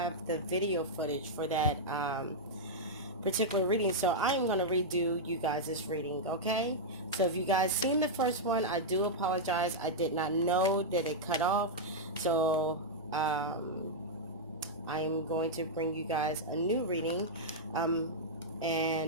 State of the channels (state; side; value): normal; both; correlation -0.06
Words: the video footage for that particular reading, so I am going to redo you guys' reading, okay? So if you guys seen the first one, I do apologize. I did not know that it cut off, so I am going to bring you guys a new reading